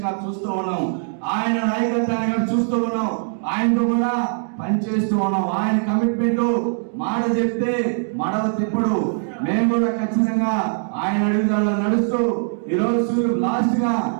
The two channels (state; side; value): silent; left; digital silence